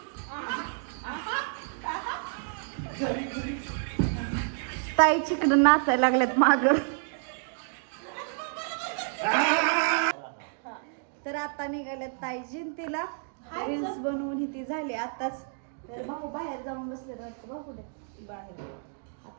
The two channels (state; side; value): silent; left; digital silence